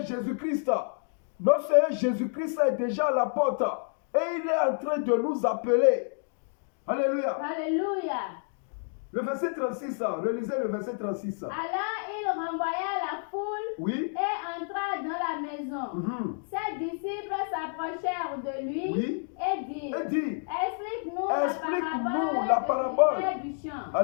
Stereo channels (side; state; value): right; silent; 58 dB below the other